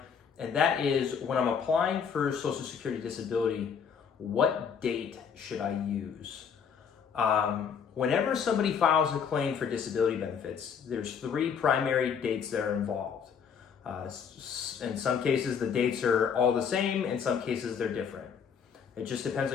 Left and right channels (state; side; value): quieter; right; 6.9 dB